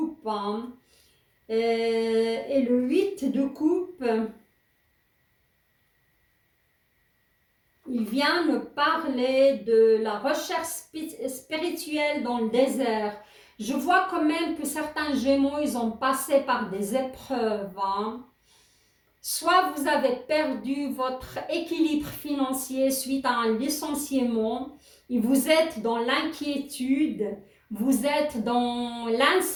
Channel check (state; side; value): identical; both; correlation 1.00